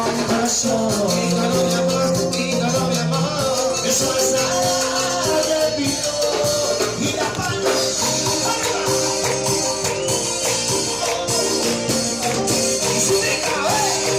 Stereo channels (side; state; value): right; noise; hum, 20 dB below the sound